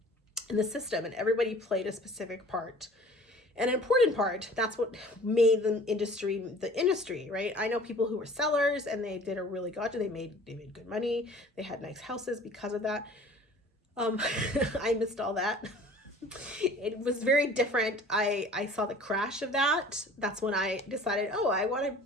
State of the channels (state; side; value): normal; both; correlation 0.47